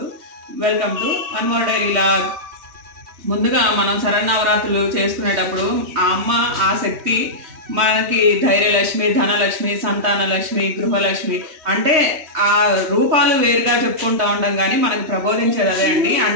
welcome to one more daily log. ముందుగా మనం శరన్నవరాత్రులు చేసుకునేటప్పుడు ఆ అమ్మ ఆ శక్తి మనకి ధైర్యలక్ష్మి, ధనలక్ష్మి, సంతానలక్ష్మి, గృహలక్ష్మి అంటే ఆ రూపాలు వేరుగా చెప్పుకుంటూ ఉంటాం కానీ మనకు ప్రబోధించేది అదే అండి.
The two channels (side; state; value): left; late; 3.2 ms